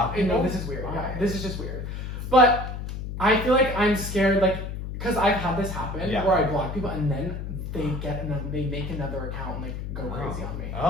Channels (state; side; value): noise; left; hum, 6 dB below the sound